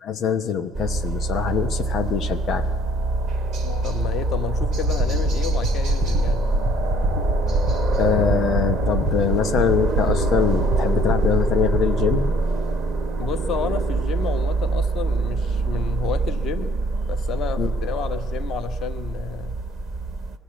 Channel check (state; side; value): normal; both; correlation 0.59